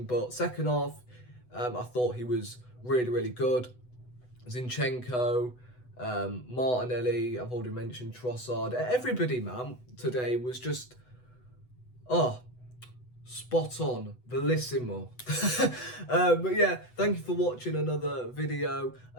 but second half, I thought he was really, really good. Zinchenko, Martinelli, I've already mentioned Trossard. Everybody, man, today was just, spot on, bellissimo. But yeah, thank you for watching another video.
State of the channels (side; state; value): right; late; 8.0 ms